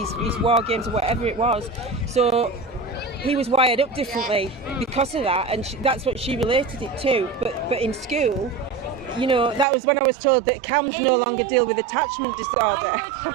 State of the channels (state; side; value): drops out; left; at 9.7 s